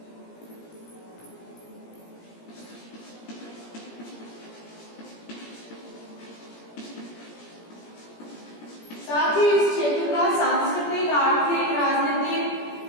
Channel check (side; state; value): right; late; 17 ms